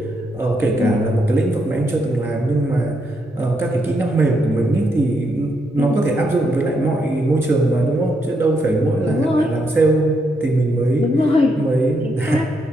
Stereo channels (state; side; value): normal; both; correlation 0.78